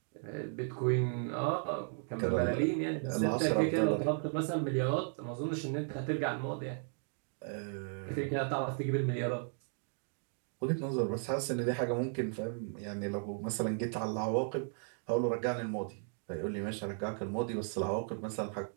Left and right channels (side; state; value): left; silent; 54 dB below the other